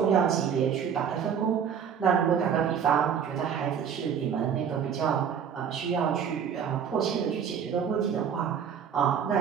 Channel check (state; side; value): quieter; left; 7.7 dB